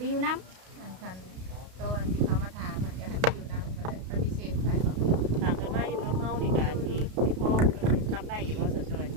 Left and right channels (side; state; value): left; late; 32 ms